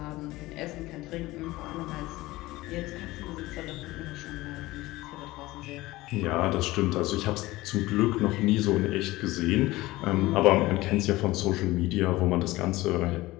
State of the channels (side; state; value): right; quieter; 18.8 dB